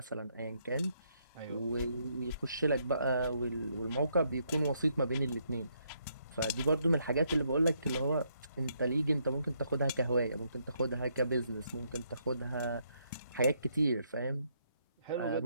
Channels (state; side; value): inverted; both; correlation -0.74